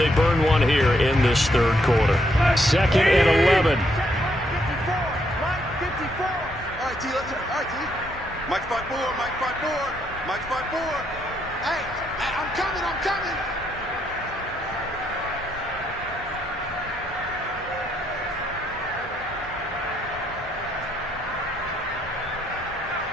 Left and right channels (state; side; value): normal; both; correlation 0.75